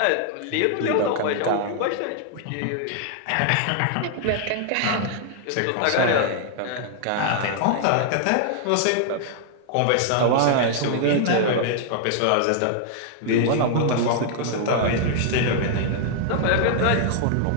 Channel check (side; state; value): both; different; correlation -0.01